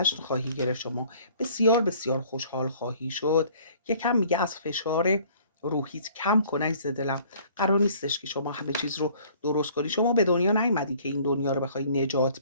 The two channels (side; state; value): both; inverted; correlation -0.54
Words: خواهی گرفت. شما بسیار بسیار خوشحال خواهی شد. یکم میگه از فشار روحیت کم کن عزیز دلم. قرار نیستش که شما همه چیز رو درست کنی. شما به دنیا نیومدی که این دنیا رو بخوای نجات